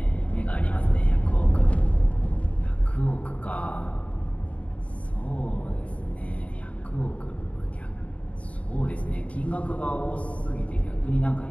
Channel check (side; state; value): right; late; 0.065 ms